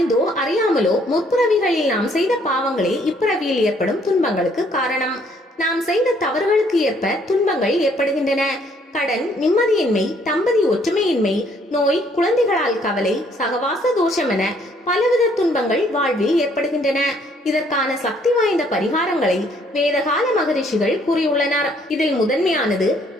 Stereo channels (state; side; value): normal; both; correlation 0.65